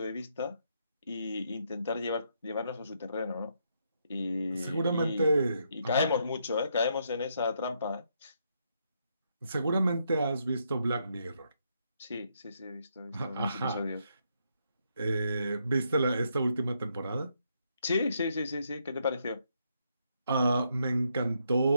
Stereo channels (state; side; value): inverted; both; correlation -0.77